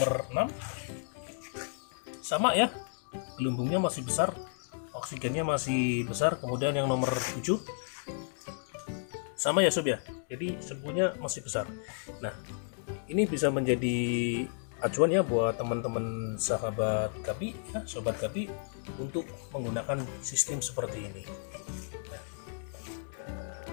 6 sama ya, gelembungnya masih besar, oksigennya masih besar. Kemudian yang nomor 7 sama ya Sob ya, jadi semuanya masih besar. Nah, ini bisa menjadi acuan ya buat teman-teman sahabat Gapi ya, Sobat Gapi, untuk menggunakan sistem seperti ini.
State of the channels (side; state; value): right; silent; digital silence